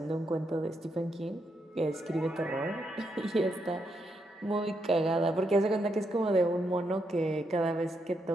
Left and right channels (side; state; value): both; normal; correlation 0.80